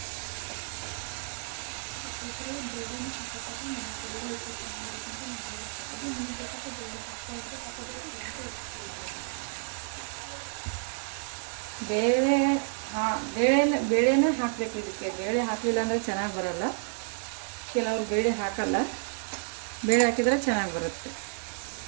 ಬೇಳೆನ ಹಾಕಬೇಕು. ಇದಕ್ಕೆ ಬೇಳೆ ಹಾಕಲಿಲ್ಲ ಅಂದರೆ ಚೆನ್ನಾಗಿ ಬರಲ್ಲ. ಕೆಲವರು ಬೇಳೆ ಹಾಕಲ್ಲ, ಬೇಳೆ ಹಾಕಿದರೆ ಚೆನ್ನಾಗಿ ಬರುತ್ತೆ.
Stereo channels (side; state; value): left; silent; 57 dB below the other